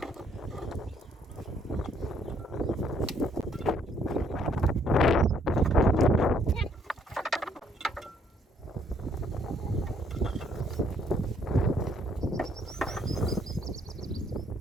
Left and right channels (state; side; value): normal; both; correlation 0.66